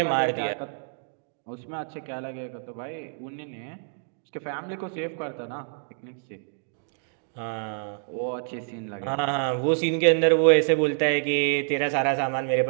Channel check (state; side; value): silent; left; digital silence